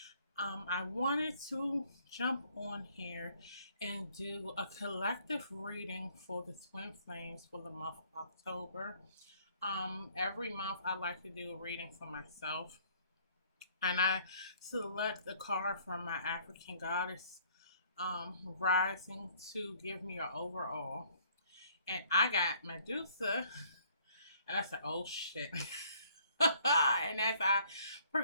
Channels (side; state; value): both; inverted; correlation -0.61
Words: I wanted to jump on here and do a collective reading for the twin flames for the month of October. Every month I like to do a reading for myself, and I select the card from my African goddess rising to give me an overall. And I got Medusa, and I said, oh shit. And as I